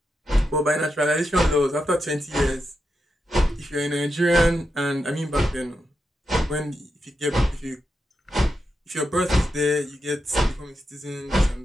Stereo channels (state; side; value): normal; both; correlation 0.86